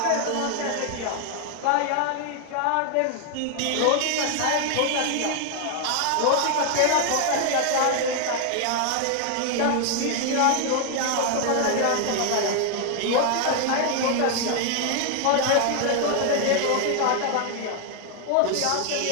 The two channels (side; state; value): both; different; correlation 0.01